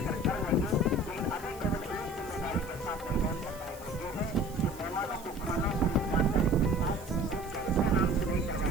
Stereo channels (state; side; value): noise; right; hiss, 19 dB below the sound